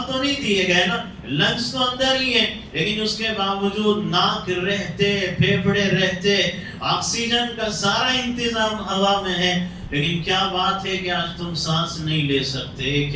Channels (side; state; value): both; identical; correlation 1.00